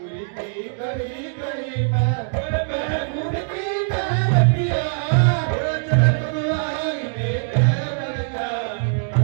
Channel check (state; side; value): silent; left; digital silence